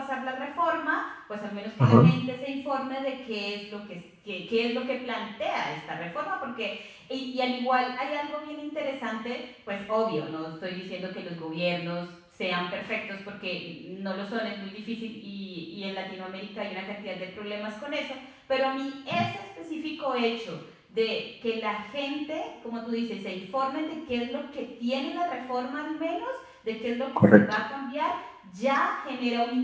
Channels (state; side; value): identical; both; correlation 1.00